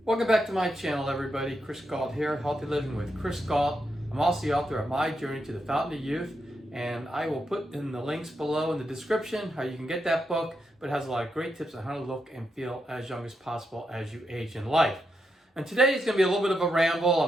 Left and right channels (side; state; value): both; normal; correlation 0.84